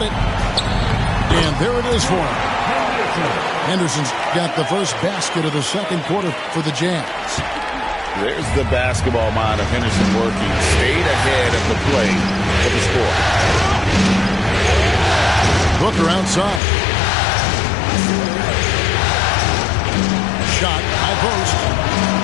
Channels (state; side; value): drops out; right; at 16.6 s